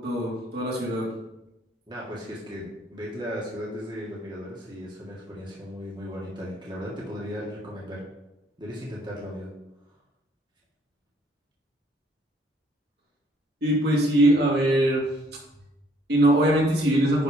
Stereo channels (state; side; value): normal; both; correlation 0.63